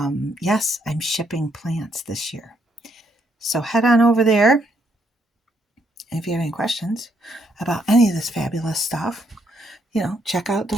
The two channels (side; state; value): both; normal; correlation 0.73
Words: yes, I'm shipping plants this year. So head on over there. And if you have any questions about any of this fabulous stuff, check out the